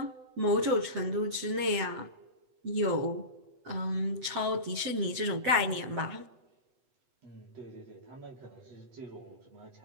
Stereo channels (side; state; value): left; late; 8.1 ms